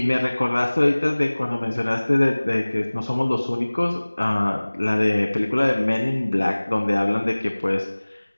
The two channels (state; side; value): inverted; both; correlation -1.00